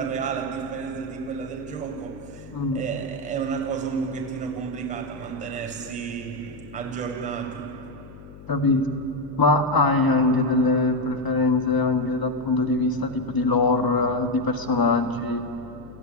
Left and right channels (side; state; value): left; noise; hum, 18 dB below the sound